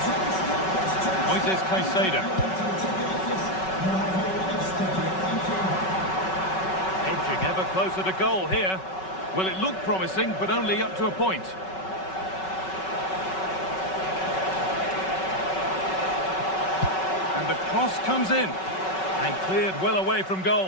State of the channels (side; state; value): right; late; 5.3 ms